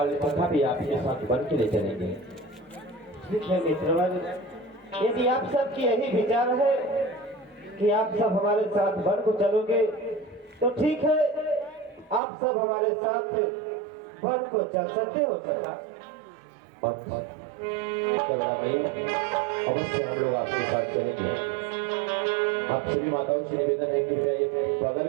सखा भी आपके साथ वन के लिए चलेंगे। ठीक है मित्रवन, यदि आप सबकी यही विचार है कि आप सब हमारे साथ वन को चलोगे तो ठीक है, आप सब हमारे साथ वन को चल सकते हो सखा। अवश्य हम लोग आपके साथ चलेंगे। आप सभी माताओं से निवेदन है कि बगल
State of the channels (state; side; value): drops out; left; at 12.2 s